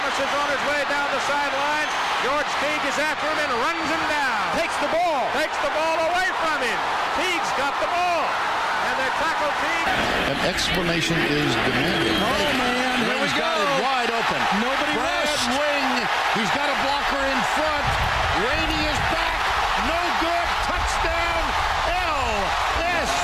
is on his way down the sideline. George Teague is after him and runs him down. Takes the ball away from him. Teague's got the ball. And they tackle Teague. An explanation is demanded. Oh, man, here we got go. it wide open. Nobody Brad rushed. Wing, he's got a blocker in front. Rainey is back. No good. Touchdown.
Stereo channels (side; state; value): both; identical; correlation 1.00